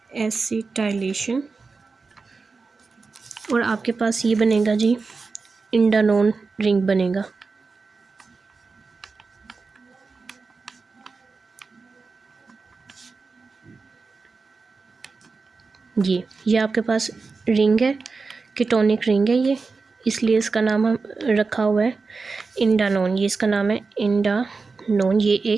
एसिटाइलेशन, और आपके पास ये बनेगा जी इंडानोन रिंग बनेगा। ये आपके पास रिंग है, कीटोनिक रिंग है ये, इसलिए इसका नाम हम रखा हुआ है इंडानोन। ये इसका नाम है इंडानोन, ये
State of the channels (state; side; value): quieter; left; 4.3 dB